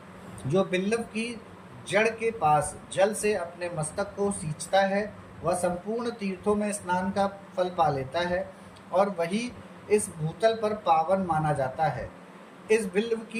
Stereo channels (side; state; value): both; identical; correlation 1.00